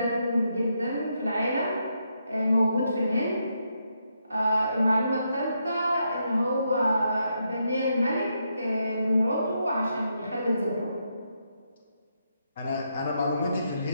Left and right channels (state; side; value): inverted; both; correlation -0.80